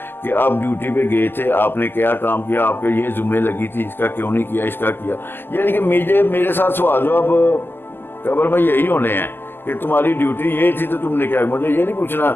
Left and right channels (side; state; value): right; late; 0.098 ms